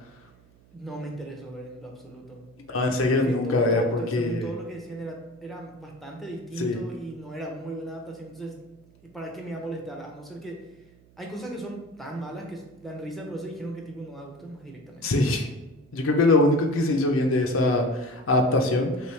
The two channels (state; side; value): noise; right; hum, 27 dB below the sound